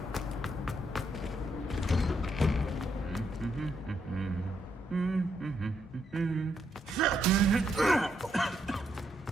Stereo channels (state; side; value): normal; both; correlation 0.77